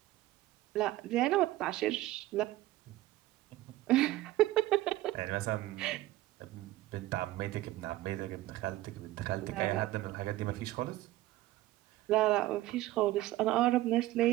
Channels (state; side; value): quieter; left; 16.3 dB